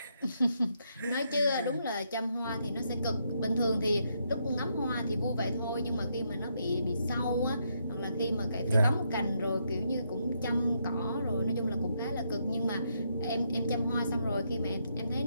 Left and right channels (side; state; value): both; inverted; correlation -0.77